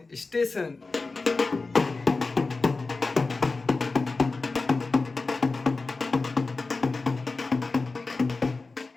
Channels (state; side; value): quieter; right; 3.8 dB